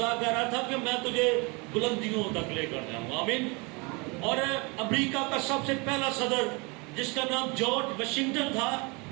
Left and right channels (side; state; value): left; quieter; 28.7 dB